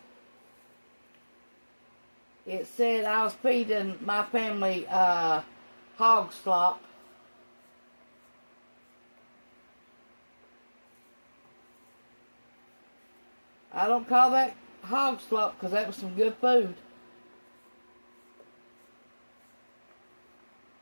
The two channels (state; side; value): inverted; both; correlation -1.00